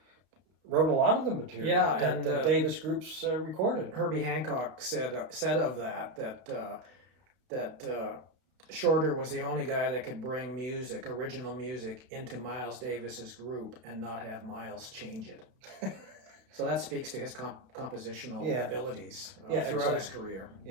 a lot of the material that the Davis groups recorded. Herbie Hancock said of that Shorter was the only guy that could bring original music, into Miles Davis's group and not have Miles change it. So that speaks to his compositional abilities throughout his career.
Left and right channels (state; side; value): late; left; 32 ms